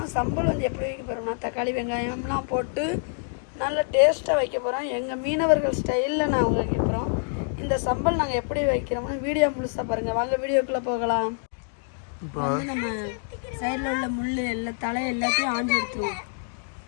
சம்பல் வந்து எப்படி வைக்க போகிறோம்னா தக்காளி வெங்காயம்லாம் போட்டு நல்ல டேஸ்ட்டாக வைக்க போகிறோம். எங்கள் மீனவர்கள் ஸ்டைலில் நாங்கள் வைக்க போகிறோம். இந்த சம்பல் நாங்கள் எப்படி வைக்கிறோம்னு வீடியோ முழுசாக பாருங்கள். வாங்க வீடியோக்குள்ளே போகலாம். இப்போ வந்து நம்ம சைடில் உள்ள முள் எல்லாம் தலை எல்லாத்தையும் ஆஞ்சு எடுத்துருவோம்.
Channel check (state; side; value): silent; right; 61 dB below the other